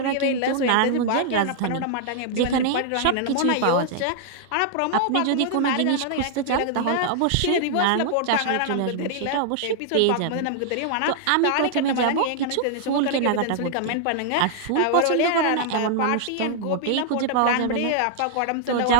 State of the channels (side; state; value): both; different; correlation -0.01